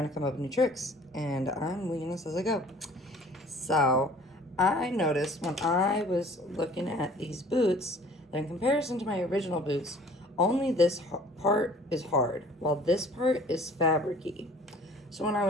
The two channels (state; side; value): normal; both; correlation 0.50